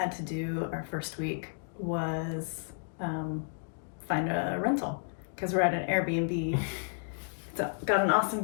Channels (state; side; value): silent; right; digital silence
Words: to do our first week was find a rental, because we're at an Airbnb. It's got an awesome